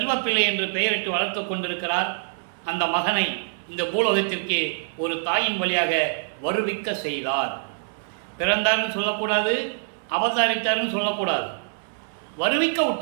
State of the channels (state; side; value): silent; left; 62 dB below the other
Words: என்று பெயரிட்டு வளர்த்து கொண்டிருக்கிறார். அந்த மகனை இந்த பூலோகத்திற்கு ஒரு தாயின் வழியாக வருவிக்க செய்தார். பிறந்தார்னு சொல்லக்கூடாது, அவதாரித்தார்னு சொல்லக்கூடாது. வருவிக்க